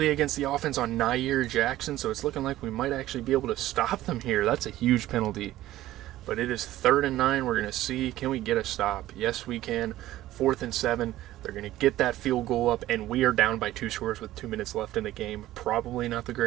against the offense on Nair Jackson, so it's looking like we might actually be able to stop them here. That's a huge penalty. But it is 3rd and 9. We're going to see, can we get a stop? Yes, we can. 4th and 7. They're going to get that field goal up, and we are down by 2 scores with 2 minutes left in the game. Probably not the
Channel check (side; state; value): left; quieter; 14.9 dB